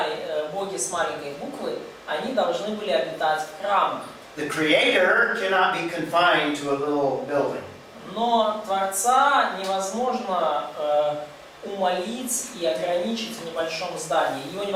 боги с маленькой буквы, они должны были обитать в храмах. The Creator cannot be confined to a little building. Но Творца невозможно умолить и ограничить в небольшом здании. Его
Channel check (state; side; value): identical; both; correlation 1.00